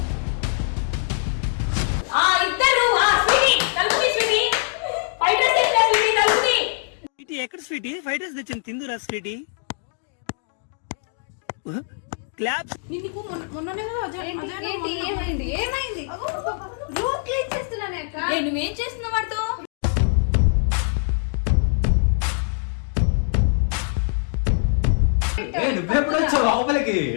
ఇద్దరు స్వీటీ తలుపుని స్వీటీ ఫైట్ డ్రెస్ తెచ్చా స్వీటీ తలుపుని. స్వీటీ ఎక్కడ స్వీటీ? ఫైట్ డ్రెస్ తెచ్చింది తిందురా స్వీటీ. క్లాప్స్. నీకు మొన్ననే కదా ఏమైంది ఏమైంది? రూమ్ క్లీన్ చేస్తున్నానే అక్క. నువ్వేం చేస్తున్నావు వాడితో? నువ్వెప్పుడు వచ్చావు లోపలికి?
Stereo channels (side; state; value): right; silent; 63 dB below the other